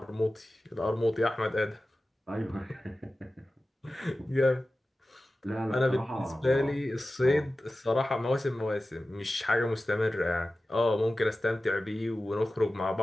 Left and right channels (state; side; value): normal; both; correlation 0.95